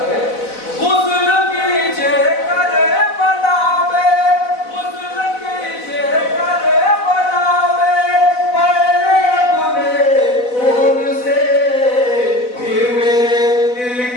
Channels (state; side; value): late; right; 4.0 ms